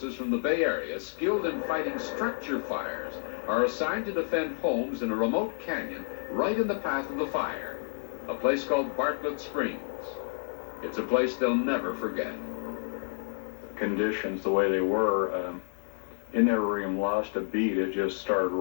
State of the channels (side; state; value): right; silent; 58 dB below the other